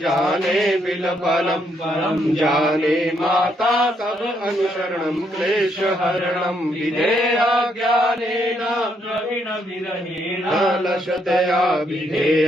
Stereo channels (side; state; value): both; normal; correlation 0.74